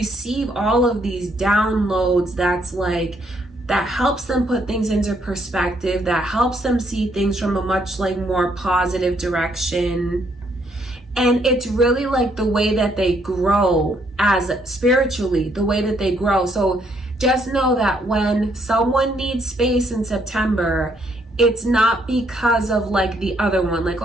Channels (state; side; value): normal; both; correlation 0.71